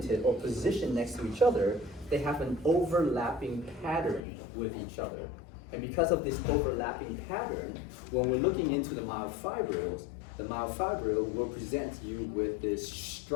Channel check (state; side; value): drops out; right; at 4.2 s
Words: or positioned next to each other, they have an overlapping pattern with each other. And because of this overlapping pattern, when we're looking into the myofibrils will present you with this